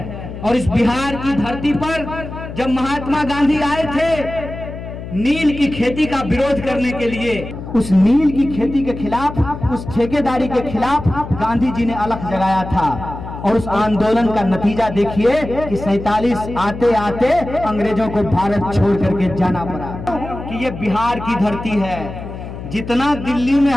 और इस बिहार की धरती पर जब महात्मा गांधी आए थे नील की खेती का विरोध करने के लिए, उस नील की खेती के खिलाफ, उस ठेकेदारी के खिलाफ गांधी जी ने अलख जगाया था। और उस आंदोलन का नतीजा देखिए कि 47 आते आते अंग्रेजों को भारत छोड़ करके जाना पड़ा। कि ये बिहार की धरती है, जितना दिल्ली में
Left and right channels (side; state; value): left; noise; hum, 10 dB below the sound